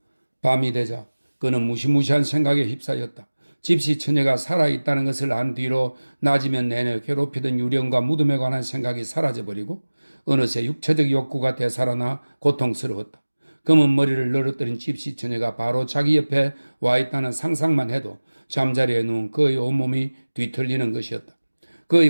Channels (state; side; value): inverted; both; correlation -1.00